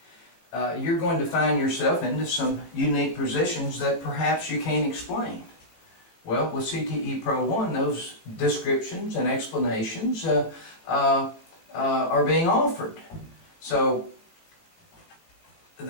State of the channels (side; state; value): right; late; 18 ms